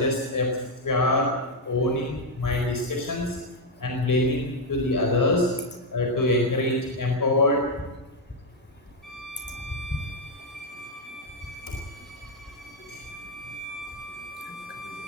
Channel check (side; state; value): both; normal; correlation 0.02